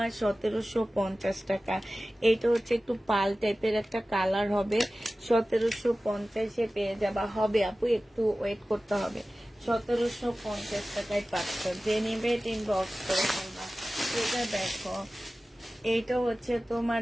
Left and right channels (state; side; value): normal; both; correlation 0.96